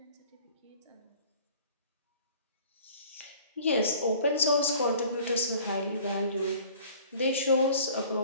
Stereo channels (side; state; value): both; inverted; correlation -0.49